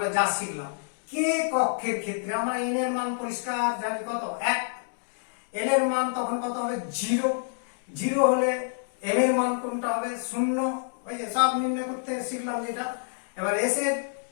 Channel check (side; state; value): right; silent; digital silence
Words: যা শিখলাম। কে কক্ষের ক্ষেত্রে আমরা n এর মান পরিষ্কার জানি কত 1, l এর মান তখন কত হবে 0, 0 হলে m এর মান কোনটা হবে 0, ওই যে সব নির্ণয় করতে শিখলাম যেটা। এবার s এর